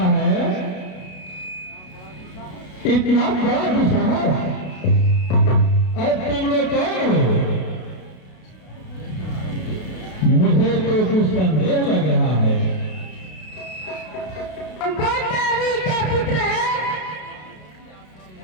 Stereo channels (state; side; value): late; right; 32 ms